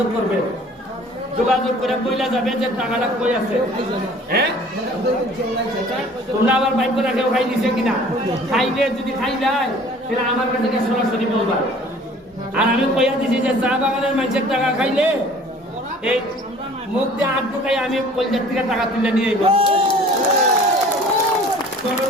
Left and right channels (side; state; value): both; normal; correlation 0.50